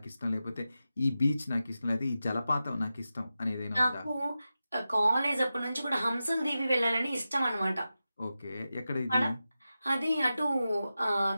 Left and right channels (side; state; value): both; inverted; correlation -0.92